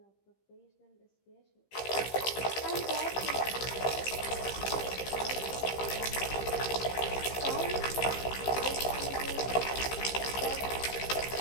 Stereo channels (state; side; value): late; right; 15 ms